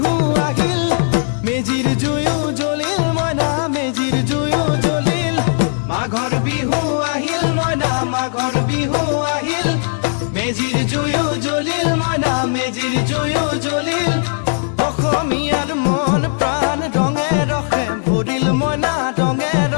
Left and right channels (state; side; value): silent; right; digital silence